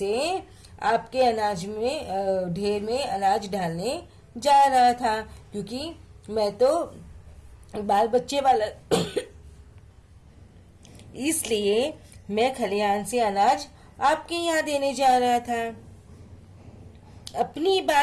आपके अनाज में ढेर में अनाज डालने जा रहा था, क्योंकि मैं तो बाल बच्चे वाला इसलिए मैं खलिहान से अनाज आपके यहाँ देने जा रहा था। अपनी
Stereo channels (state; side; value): identical; both; correlation 1.00